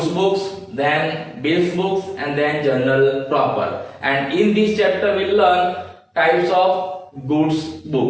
books, then bills books, and then journal proper. And in this chapter we learn types of goods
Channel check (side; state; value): both; identical; correlation 1.00